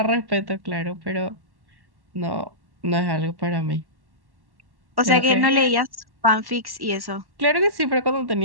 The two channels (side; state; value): left; late; 1.1 ms